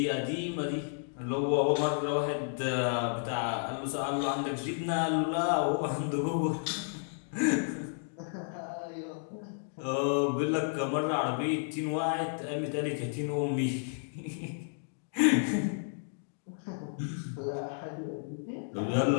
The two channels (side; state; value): right; silent; digital silence